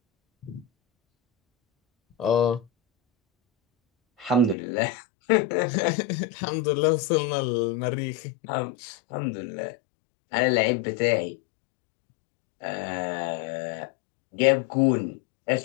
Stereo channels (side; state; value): right; drops out; at 4.5 s